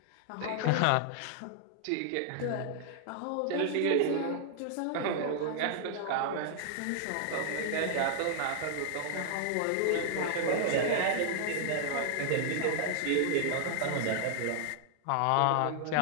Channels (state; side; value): different; both; correlation -0.01